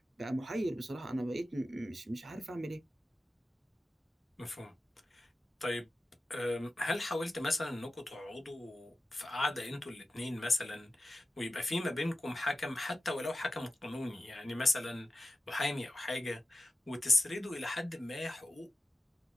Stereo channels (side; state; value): both; normal; correlation 0.94